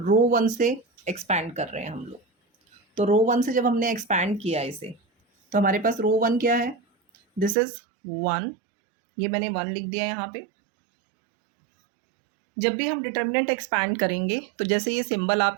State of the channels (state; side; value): drops out; left; at 7.6 s